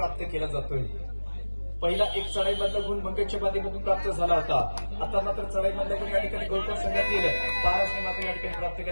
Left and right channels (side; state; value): both; inverted; correlation -1.00